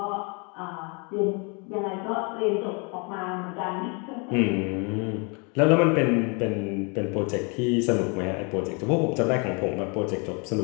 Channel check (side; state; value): right; quieter; 33.2 dB